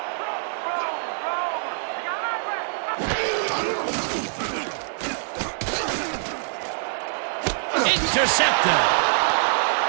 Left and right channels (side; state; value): left; silent; digital silence